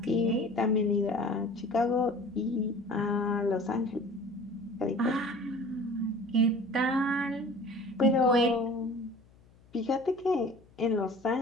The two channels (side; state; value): left; noise; hum, 28 dB below the sound